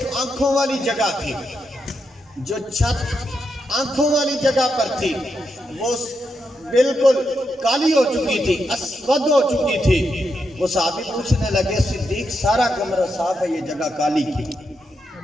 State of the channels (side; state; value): both; normal; correlation 0.83